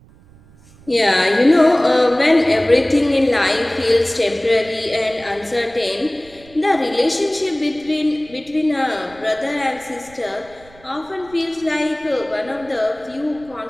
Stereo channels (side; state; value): right; noise; rumble, 25 dB below the sound